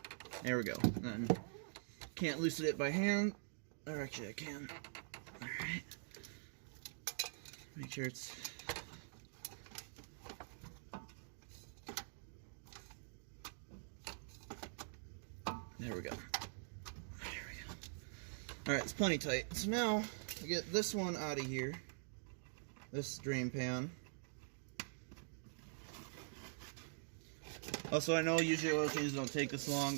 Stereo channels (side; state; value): left; silent; digital silence